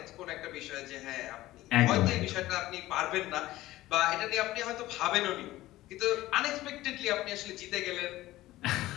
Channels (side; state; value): right; quieter; 16.5 dB